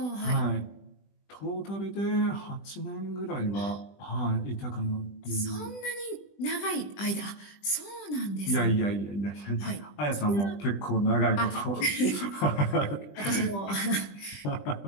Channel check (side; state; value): right; late; 20 ms